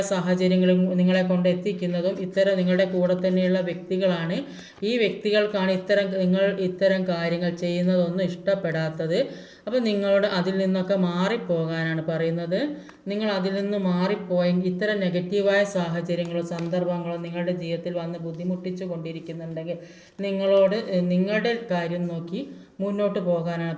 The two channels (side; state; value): both; identical; correlation 1.00